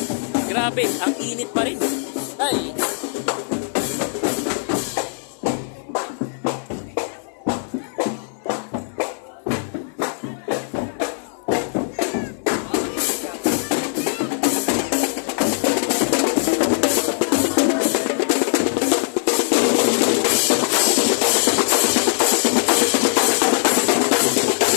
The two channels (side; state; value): right; silent; digital silence